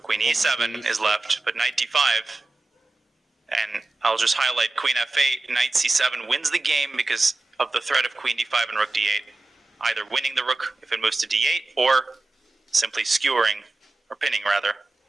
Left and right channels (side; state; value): left; quieter; 3.0 dB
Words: e7 is left, but knight d5. And I'll just highlight queen f8, knight c7 wins the game because of the threat of queen d5 and rook d8. Either winning the rook if it moves to d8, or simply skewering, or pinning rather,